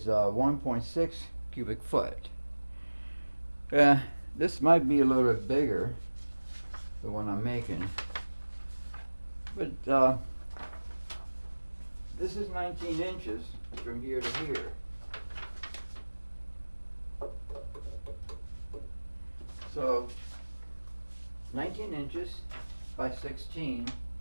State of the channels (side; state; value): both; inverted; correlation -1.00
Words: 1.6 cubic foot. This might be a little bit bigger, the one I'm making. But this is 19 inches from here to here. So 19 inches by 16